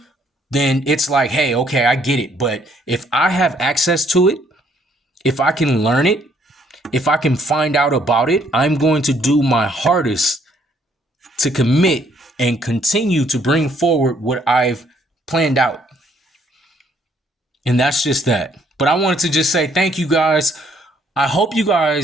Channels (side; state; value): both; normal; correlation 0.66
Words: then it's like, hey, okay, I get it. But if I have access to it, if I can learn it, if I can find out about it, I'm going to do my hardest to commit and continue to bring forward what I've planned out. And that's just that. But I wanted to just say thank you guys. I hope you